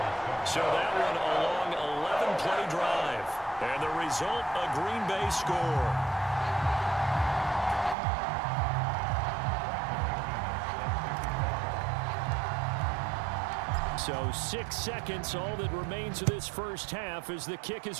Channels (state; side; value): drops out; left; at 8.0 s